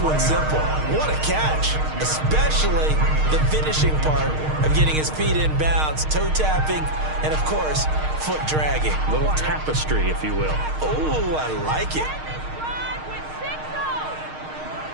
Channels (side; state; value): left; late; 6.5 ms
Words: one simple. What a catch, especially the finishing part of getting his feet in bounds, toe tapping, and of course, foot dragging. Little tapestry, if you will. Oh, I like it.